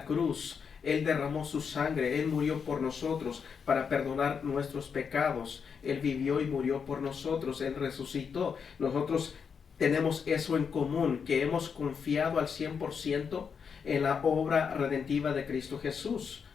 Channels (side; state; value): right; quieter; 6.4 dB